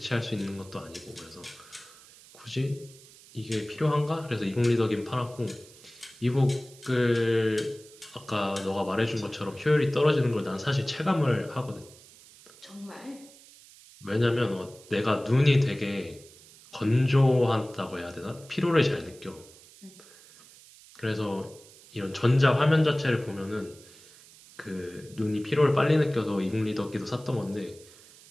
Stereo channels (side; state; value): right; noise; hiss, 23 dB below the sound